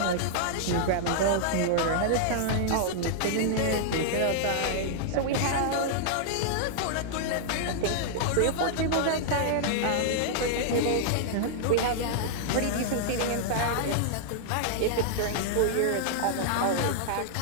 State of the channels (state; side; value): different; both; correlation -0.01